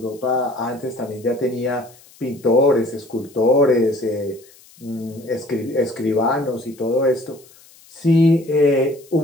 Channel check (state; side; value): noise; left; hiss, 26 dB below the sound